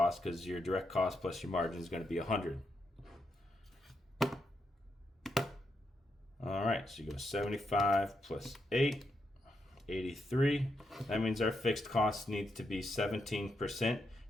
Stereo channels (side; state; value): both; normal; correlation 0.82